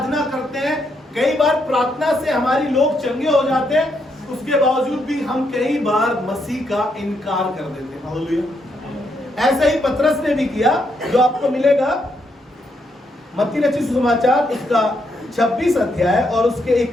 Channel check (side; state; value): both; normal; correlation 0.77